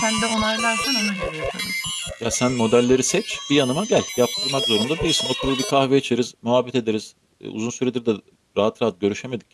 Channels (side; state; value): both; identical; correlation 1.00